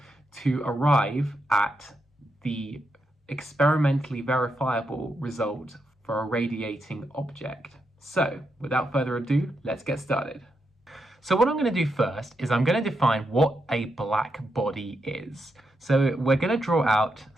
to arrive at the experimentally verifiable result for a radiating object. So, without further ado, let's get started. So what I'm going to do first is I'm going to define what a black body is. So we're going to draw out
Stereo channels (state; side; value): normal; both; correlation 0.83